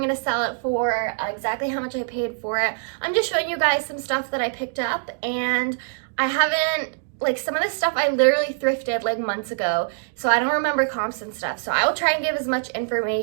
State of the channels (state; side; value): silent; left; digital silence